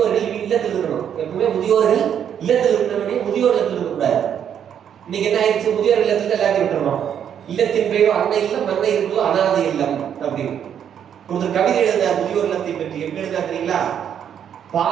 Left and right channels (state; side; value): quieter; left; 8.8 dB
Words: இல்லத்தில் இருக்கணும். எப்பவுமே முதியோர்கள் இல்லத்தில் இருக்கிறவனே முதியோர் இல்லத்தில் இருக்கக்கூடாது. இன்னைக்கு என்ன ஆயிடுச்சு, முதியோர் இல்லத்துல எல்லாத்தையும் விட்டுறணும். இல்லத்தின் பெயரோ அன்னை இல்லம், அன்னை இருந்தோ அனாதை இல்லம் அப்படின்னு ஒருத்தர் கவிதை எழுதினார் முதியோர் இல்லத்தை பற்றி. எப்படி எழுதினா தெரியுங்களா?